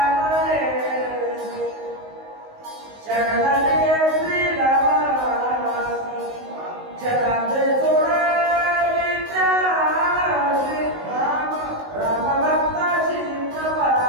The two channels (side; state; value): left; late; 19 ms